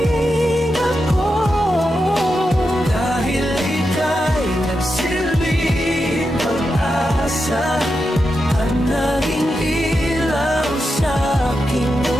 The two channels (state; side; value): normal; both; correlation 0.88